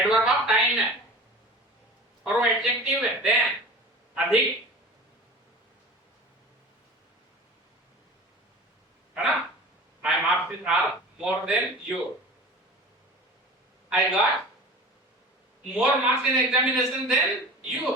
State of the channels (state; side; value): normal; both; correlation 0.37